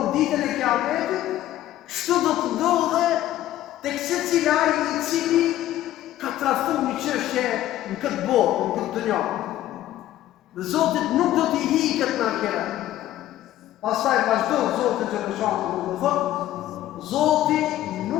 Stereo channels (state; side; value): quieter; right; 13.6 dB